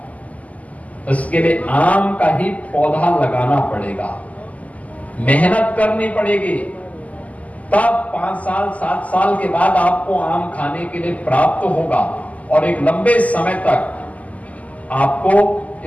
उसके लिए आम का ही पौधा लगाना पड़ेगा, मेहनत करनी पड़ेगी, तब 5 साल 7 साल के बाद आपको आम खाने के लिए प्राप्त होगा, और एक लंबे समय तक आपको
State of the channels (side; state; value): right; late; 0.073 ms